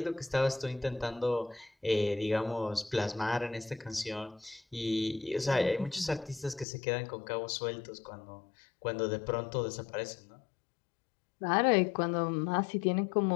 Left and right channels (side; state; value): right; drops out; at 6.7 s